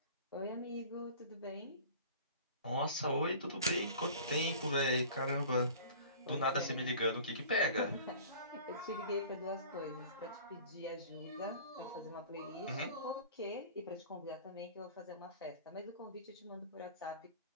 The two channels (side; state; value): both; inverted; correlation -0.43